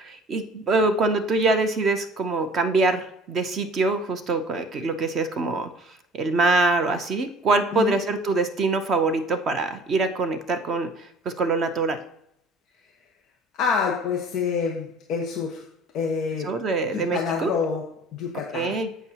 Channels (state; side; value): normal; both; correlation 0.47